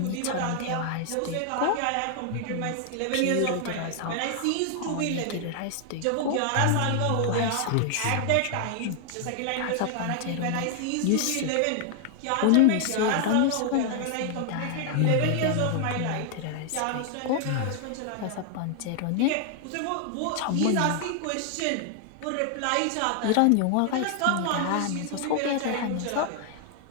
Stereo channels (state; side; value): different; both; correlation 0.00